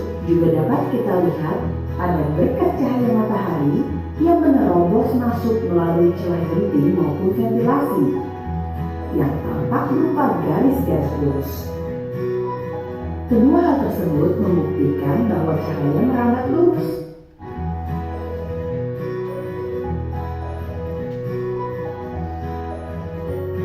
juga dapat kita lihat pada berkat cahaya matahari yang menerobos masuk melalui celah genting maupun ventilasi yang tampak berupa garis-garis lurus. Kedua hal tersebut membuktikan bahwa cahaya merambat lurus.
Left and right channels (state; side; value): identical; both; correlation 1.00